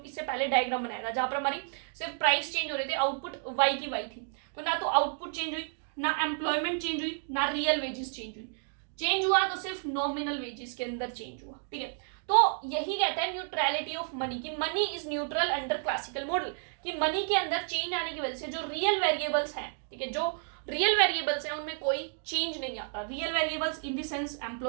इससे पहले डायग्राम बनाया था, जहां पर हमारी सिर्फ प्राइस चेंज हो रहे थे, आउटपुट वाई की वाई थी। तो ना तो आउटपुट चेंज हुई, ना एम्प्लॉयमेंट चेंज हुई, ना रियल वेजेस चेंज हुई। चेंज हुआ तो सिर्फ नॉमिनल वेजेस के अंदर चेंज हुआ। ठीक है, तो यही कहता है न्यूट्रलिटी ऑफ मनी, की money is neutral under classical model, कि मनी के अंदर चेंज आने की वजह से जो रियल वेरिएबल्स हैं, ठीक है, जो रियल वेरिएबल्स हैं उनमें कोई चेंज नहीं आता। Real variables in the sense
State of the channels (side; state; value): left; silent; 57 dB below the other